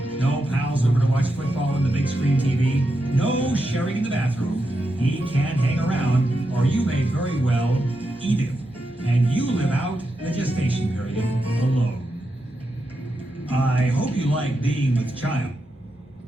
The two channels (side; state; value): both; normal; correlation 0.86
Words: no pals over to watch football on the big screen TV, no sharing in the bathroom. He can't hang around, or you may very well eat him. And you live out the gestation period alone. I hope you like being with child.